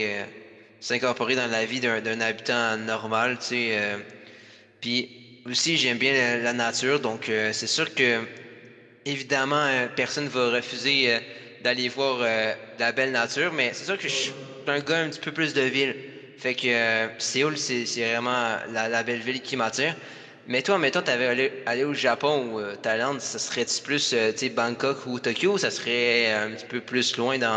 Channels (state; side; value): identical; both; correlation 1.00